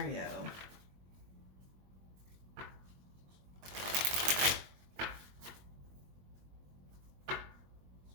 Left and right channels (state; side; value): late; left; 21 ms